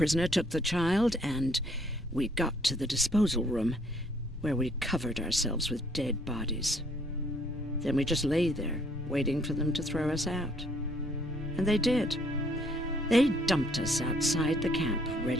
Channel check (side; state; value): both; normal; correlation 0.65